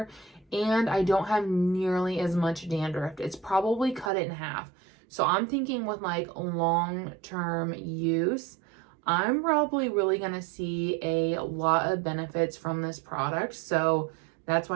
and I don't have nearly as much dandruff. It's probably cut it in half. So I'm thinking with like long-term use, I'm probably really going to see a lot of benefits from this product. So that's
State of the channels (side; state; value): left; drops out; at 4.1 s